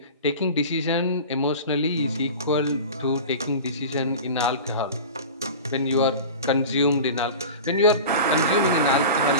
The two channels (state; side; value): inverted; both; correlation -0.33